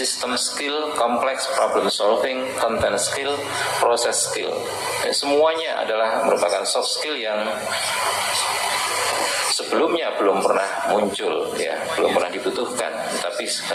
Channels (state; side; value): identical; both; correlation 1.00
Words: skill, complex problem solving, content skill, process skill. Semuanya adalah merupakan soft skill yang sebelumnya belum pernah muncul, ya, belum pernah dibutuhkan. Tapi